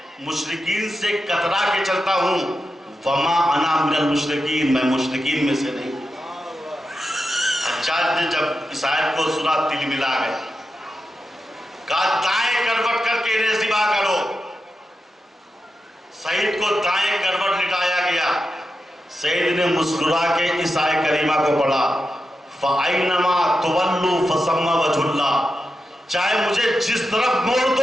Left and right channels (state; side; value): normal; both; correlation 0.89